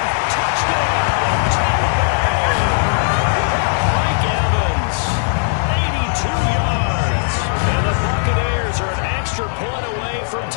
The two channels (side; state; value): right; silent; 67 dB below the other